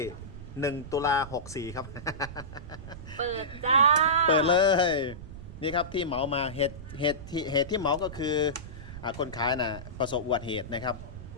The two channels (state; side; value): noise; right; rumble, 12 dB below the sound